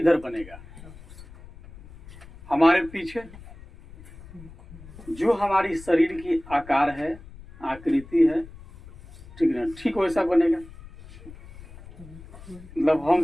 बनेगा? हमारे पीछे। जो हमारी शरीर की आकार है, आकृति है, ठीक है, ठीक वैसा बनेगा। मतलब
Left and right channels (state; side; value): noise; left; rumble, 18 dB below the sound